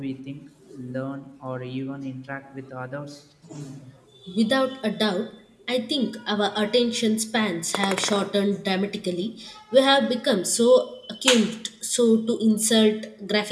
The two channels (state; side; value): identical; both; correlation 1.00